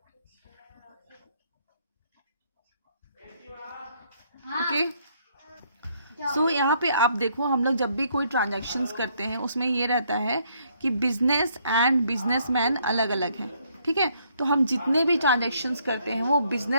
ओके, सो यहाँ पे आप देखो, हम लोग जब भी कोई ट्रांजैक्शंस करते हैं उसमें ये रहता है कि बिजनेस एंड बिजनेसमैन अलग अलग हैं. ठीक है, तो हम जितने भी ट्रांजैक्शंस करते हैं वो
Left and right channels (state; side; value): inverted; both; correlation -0.69